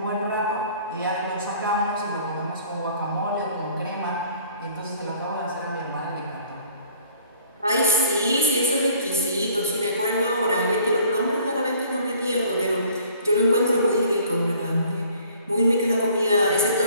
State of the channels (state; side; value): inverted; both; correlation -0.55